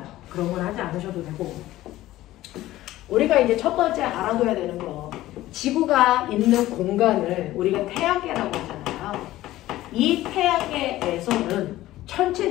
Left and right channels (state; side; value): quieter; right; 15.7 dB